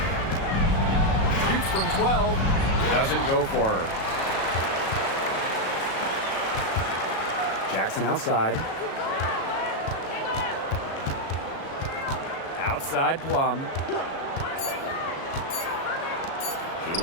Shoots from 12. Doesn't go for her. Jackson outside. Outside Plum.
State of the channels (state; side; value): late; right; 37 ms